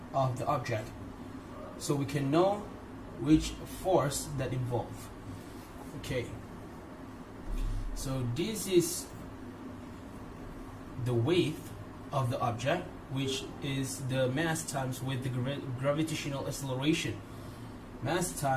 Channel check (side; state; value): both; identical; correlation 1.00